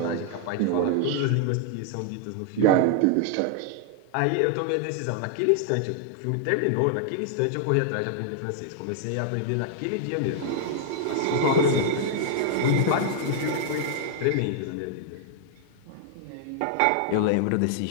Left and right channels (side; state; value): both; different; correlation 0.00